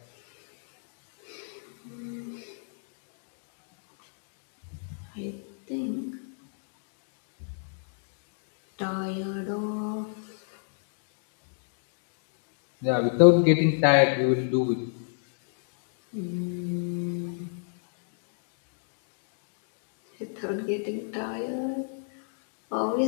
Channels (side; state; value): right; silent; digital silence